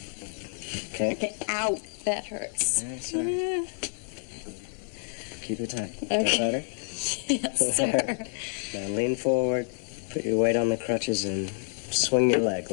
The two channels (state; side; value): silent; right; 55 dB below the other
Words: That hurts. Sorry. Keep it tight. Okay. That better? Yes, sir. Now lean forward, put your weight on the crutches, and swing your leg